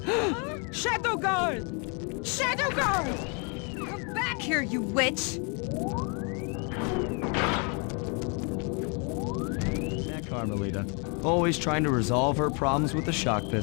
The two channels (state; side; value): quieter; right; 35.5 dB